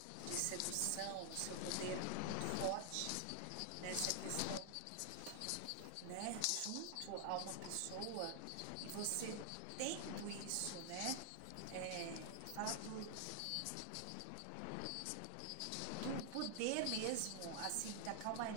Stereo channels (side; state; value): both; different; correlation 0.00